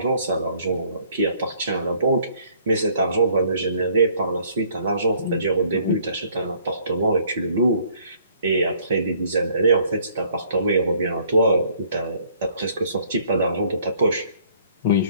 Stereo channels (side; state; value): both; inverted; correlation -0.60